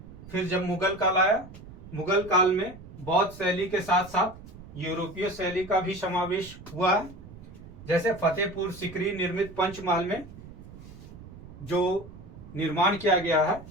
फिर जब मुगल काल आया, मुगल काल में बौद्ध शैली के साथ साथ यूरोपीय शैली का भी समावेश हुआ है। जैसे फतेहपुर सिकरी निर्मित पंचमहल में जो निर्माण किया गया है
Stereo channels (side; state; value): right; noise; rumble, 17 dB below the sound